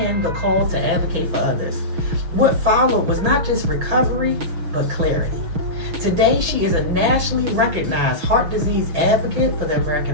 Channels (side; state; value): left; late; 6.1 ms